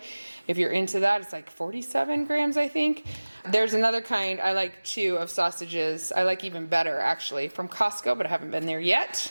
If you're into that, it's like 47 grams, I think. There's another kind I like too of sausages. I like even better, actually, from Costco, but I haven't been there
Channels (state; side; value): inverted; both; correlation -1.00